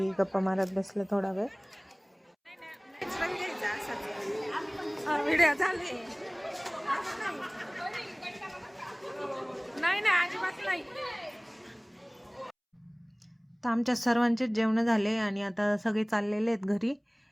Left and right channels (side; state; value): both; identical; correlation 1.00